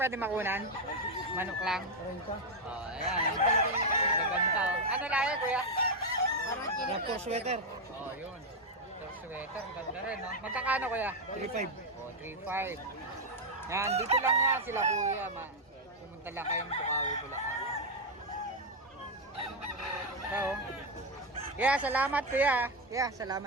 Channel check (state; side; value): normal; both; correlation 0.02